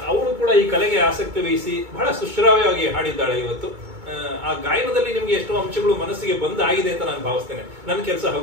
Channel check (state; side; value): late; left; 2.2 ms